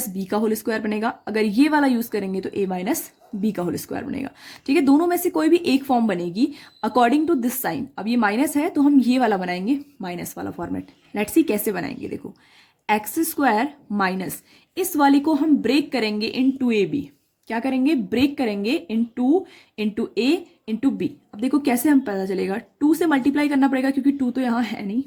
बी का होल स्क्वायर बनेगा, अगर ये वाला यूज करेंगे तो ए माइनस बी का होल स्क्वायर बनेगा, ठीक है। दोनों में से कोई भी एक फॉर्म बनेगी अकॉर्डिंग टू दिस साइन। अब ये माइनस है तो हम ये वाला बनाएंगे, माइनस वाला फॉर्मेट। लेट्स सी कैसे बनाएंगे। देखो एक्स स्क्वायर माइनस, इस वाले को हम ब्रेक करेंगे इन टू ए बी। क्या करेंगे? ब्रेक करेंगे इंटू ए इंटू बी। अब देखो कैसे हम पता चलेगा, 2 से मल्टीप्लाई करना पड़ेगा क्योंकि 2 तो यहाँ है नहीं,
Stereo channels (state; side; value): identical; both; correlation 1.00